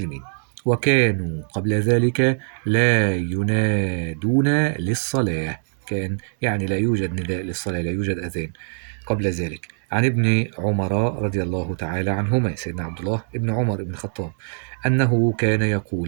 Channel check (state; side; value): silent; left; 57 dB below the other